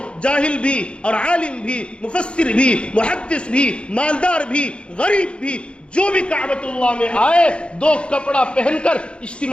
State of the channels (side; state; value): right; late; 0.057 ms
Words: جاہل بھی اور عالم بھی، مفسر بھی، محدث بھی، مالدار بھی، غریب بھی، جو بھی کعبۃ اللہ میں آئے 2 کپڑا پہن کر